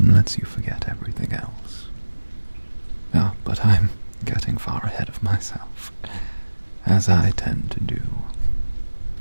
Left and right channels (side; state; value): both; inverted; correlation -1.00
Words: lets you forget everything else. Ah, but I'm getting far ahead of myself, as I tend to do.